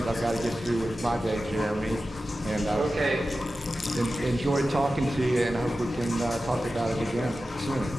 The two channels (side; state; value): both; normal; correlation 0.94